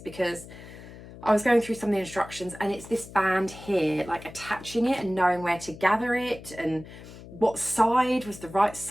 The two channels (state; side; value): noise; left; hum, 16 dB below the sound